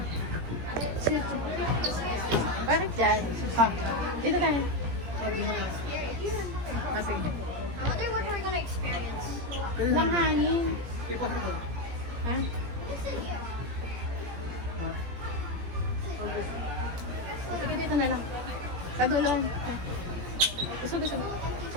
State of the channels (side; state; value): left; late; 17 ms